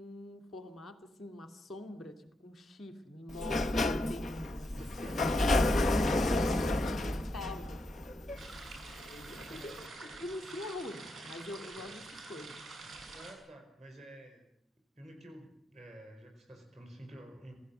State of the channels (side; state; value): both; normal; correlation 0.82